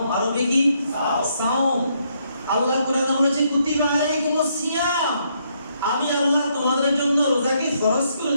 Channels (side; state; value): both; inverted; correlation -0.74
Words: আরবি কি? সাওম। আল্লাহ কোরআনে বলেছে কুতিবা আলাইকুমুস সিয়াম, আমি আল্লাহ তোমাদের জন্য রোজাকে ফরজ করে